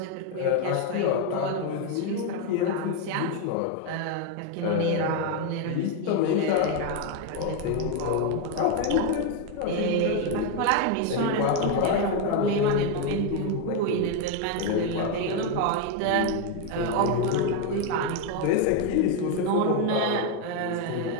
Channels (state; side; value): different; both; correlation 0.01